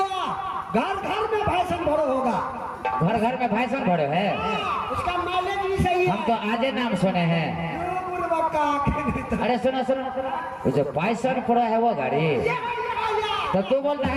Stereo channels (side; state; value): both; identical; correlation 1.00